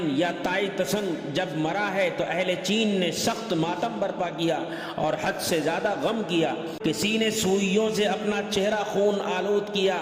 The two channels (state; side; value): identical; both; correlation 1.00